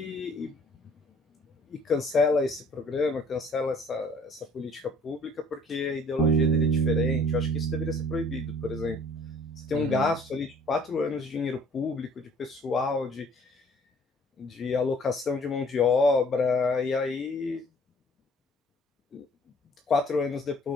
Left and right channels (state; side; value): normal; both; correlation 0.55